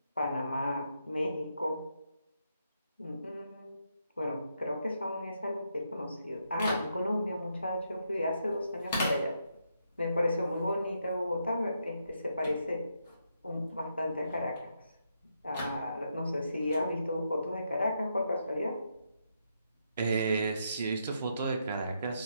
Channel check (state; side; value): inverted; both; correlation -0.79